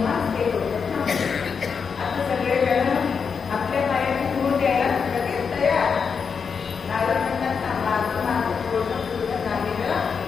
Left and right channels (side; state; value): right; quieter; 6.0 dB